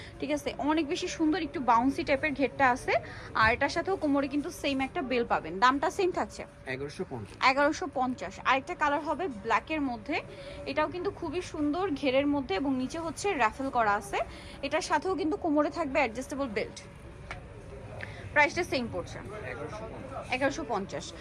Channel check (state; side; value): identical; both; correlation 1.00